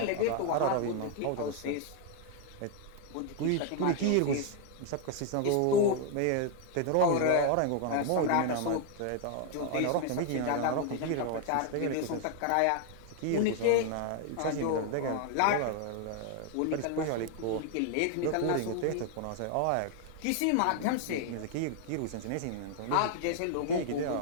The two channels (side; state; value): both; different; correlation 0.00